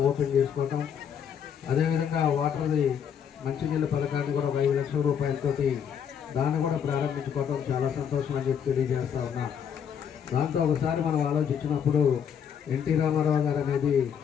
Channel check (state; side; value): quieter; right; 7.9 dB